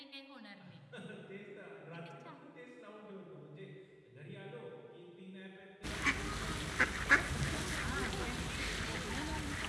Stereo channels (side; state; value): both; identical; correlation 1.00